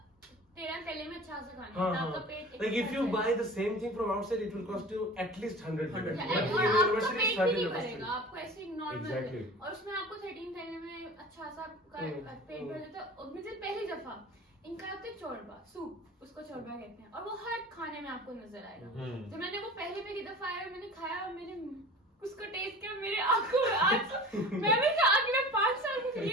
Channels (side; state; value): both; normal; correlation 0.38